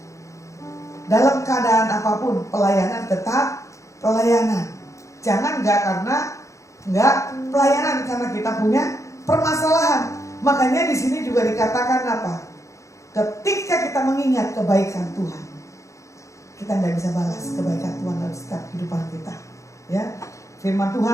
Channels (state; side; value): late; right; 0.15 ms